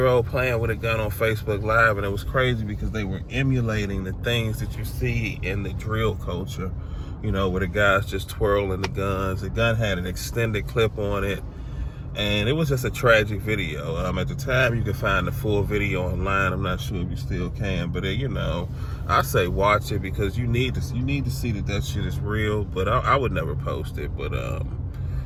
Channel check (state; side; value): identical; both; correlation 1.00